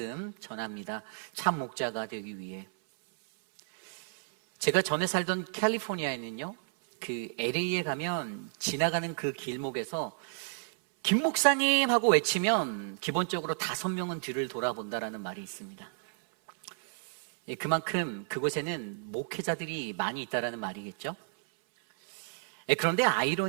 전합니다. 참 목자가 되기 위해. 제가 전에 살던 캘리포니아에는요, 그 LA에 가면 지나가는 그 길목에서 김 목사님 하고 외치면 기본적으로 5명은 뒤를 돌아본다라는 말이 있습니다. 그만큼 그곳에는 목회자들이 많이 있다라는 말이겠죠. 그런데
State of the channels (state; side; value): silent; left; 57 dB below the other